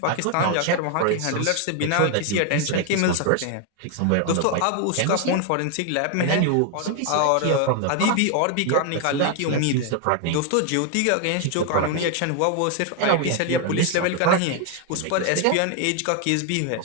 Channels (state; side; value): different; both; correlation 0.00